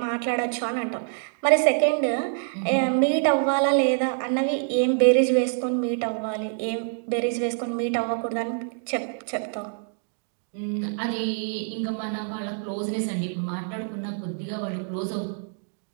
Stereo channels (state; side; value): silent; left; digital silence